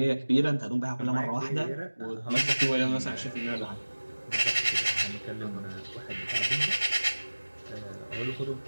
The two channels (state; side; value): inverted; both; correlation -1.00